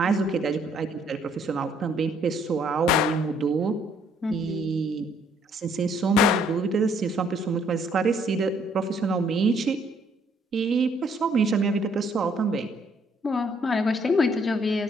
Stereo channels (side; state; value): both; normal; correlation 0.66